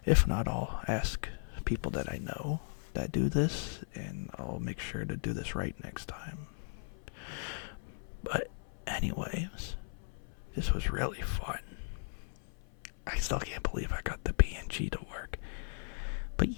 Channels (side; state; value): right; silent; 53 dB below the other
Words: If not, I'll ask people that I know that do this, and I'll make sure to do this right next time. But anyways, This was really fun. I still can't believe I got the PNG to work. But